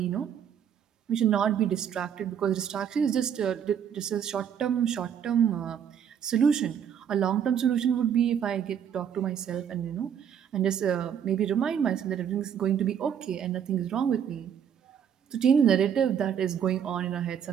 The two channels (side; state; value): left; quieter; 8.4 dB